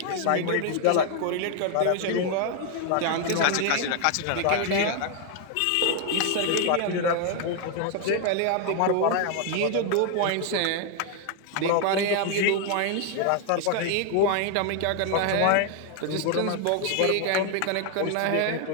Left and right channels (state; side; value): different; both; correlation 0.01